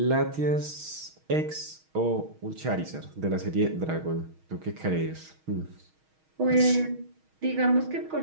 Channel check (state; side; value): late; left; 6.4 ms